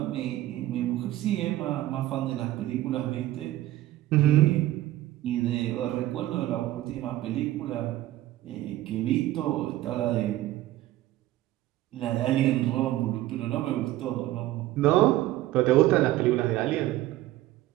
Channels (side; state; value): left; quieter; 15.4 dB